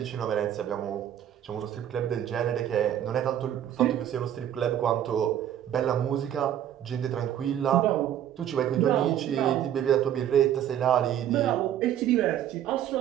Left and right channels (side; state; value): left; quieter; 10.7 dB